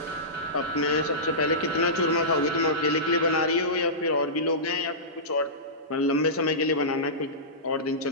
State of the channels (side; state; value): both; normal; correlation -0.19